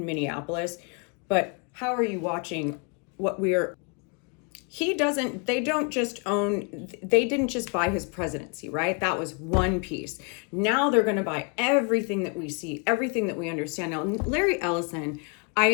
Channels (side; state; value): right; quieter; 34.8 dB